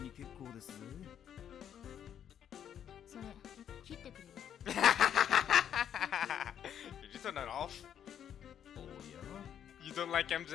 に結構ですぜ。それ切ってくれよ。Did you turn that off? おや You don't like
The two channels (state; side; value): quieter; right; 9.3 dB